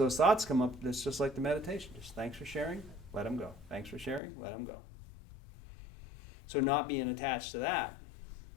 thoughts come up, it's just like the meditation. Just thanks for sharing, let them go. Thanks for sharing, let them go. So not being attached to that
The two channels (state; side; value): drops out; right; at 4.2 s